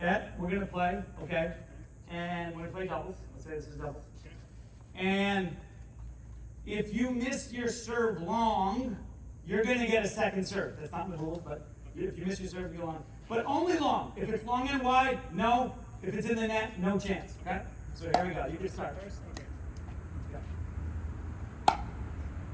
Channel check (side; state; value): both; identical; correlation 1.00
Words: we're gonna play, okay? And we're gonna play doubles. Let's say this is doubles. And if you miss your serve long, you're gonna get a second serve. That's not in the rules, but if you miss your serve, you go on. But only long. If it's long and wide, no. If it's in the net, no chance, okay? So here we go. You can start.